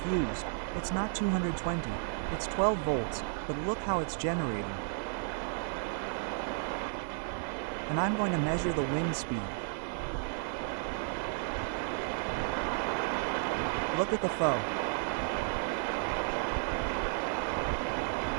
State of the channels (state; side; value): silent; left; 56 dB below the other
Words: it's not 220, it's 12 volts, but look how it's generating. And I'm going to measure the wind speed. Look at the foe.